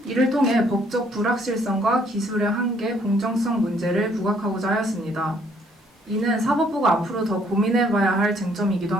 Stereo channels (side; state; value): both; normal; correlation 0.65